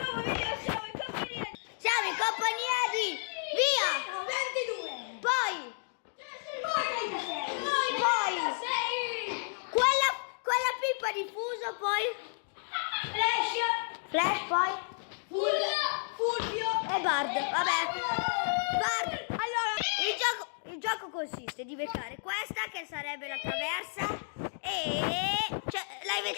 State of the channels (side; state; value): right; silent; digital silence